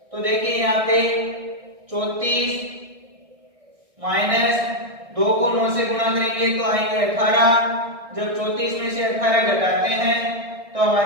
तो देखिए यहाँ पे 34 माइनस 2 को 9 से गुणा करेंगे तो आएंगे 18। जब 34 में से 18 घटाते हैं तो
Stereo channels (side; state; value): left; late; 1.6 ms